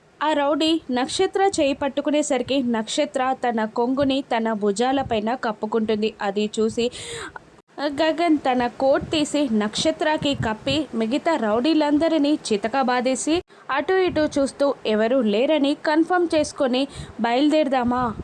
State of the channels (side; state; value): both; identical; correlation 1.00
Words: ఆ రౌడీ నక్షత్ర చేయి పట్టుకునేసరికి నక్షత్ర తన కొంగుని తన భుజాలపైన కప్పుకుంటుంది. అది చూసి గగన్ తన కోట్ తీసి నక్షత్రకి కప్పి మిగతా రౌడీలందరినీ చితక బాధేసి అటు ఇటు చూస్తూ ఎవరు లేరని కన్ఫర్మ్ చేసుకొని బయలుదేరదామా